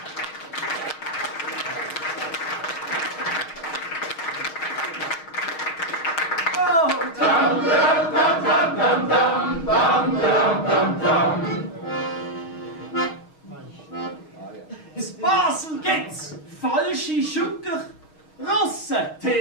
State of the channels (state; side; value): late; right; 6.3 ms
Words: In Basel gibt's falsche Schucker, Russen,